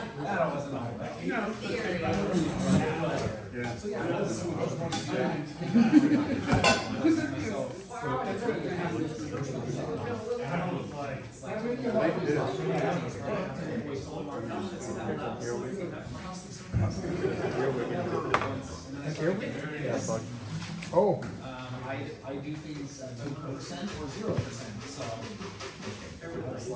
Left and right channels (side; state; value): both; identical; correlation 1.00